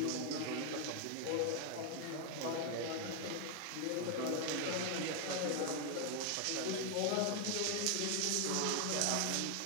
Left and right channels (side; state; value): both; different; correlation 0.01